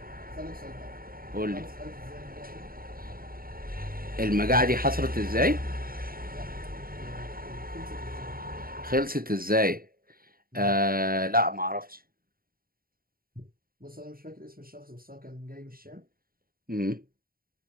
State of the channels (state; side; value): late; left; 0.42 ms